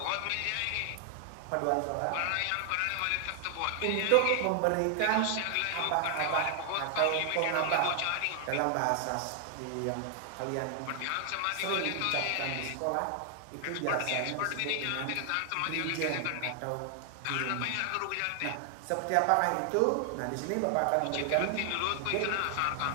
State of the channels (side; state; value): both; different; correlation 0.00